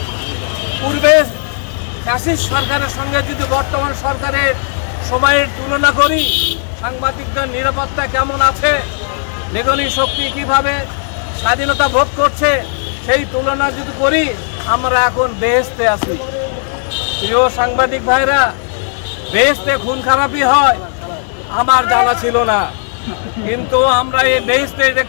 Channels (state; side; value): silent; right; digital silence